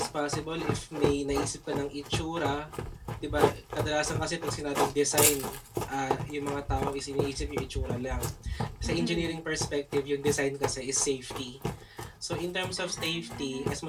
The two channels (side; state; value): both; identical; correlation 1.00